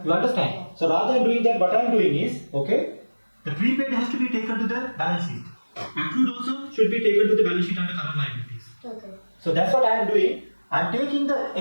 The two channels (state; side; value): inverted; both; correlation -1.00